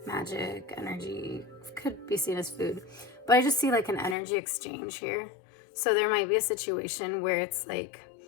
magic energy, could be seen as food, but I just see like an energy exchange here. So there might be a situation where it's like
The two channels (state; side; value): drops out; right; at 4.2 s